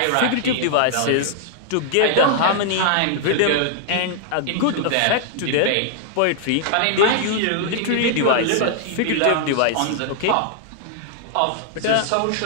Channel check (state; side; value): different; both; correlation -0.01